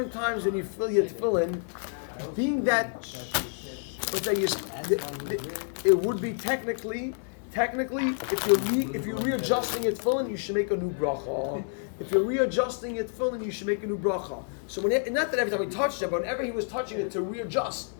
times when you fill your tefillin, being that, it would be technically, if you're readjusting your tefillin, you should make a new bracha. If you're readjusting your tefillin, you should make a new bracha. So not that every time he touched it, but whenever he was touching it to readjust,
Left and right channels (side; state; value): right; silent; 58 dB below the other